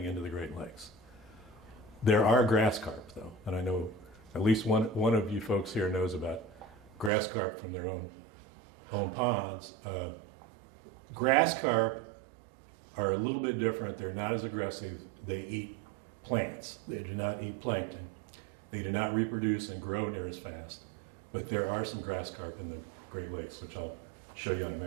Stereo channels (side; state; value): left; drops out; at 7.1 s